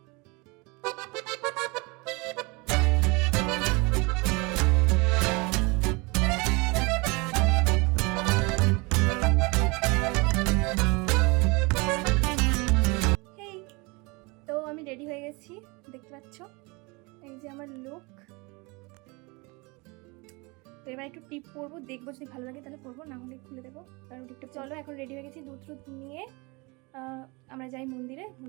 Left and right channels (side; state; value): left; quieter; 27.2 dB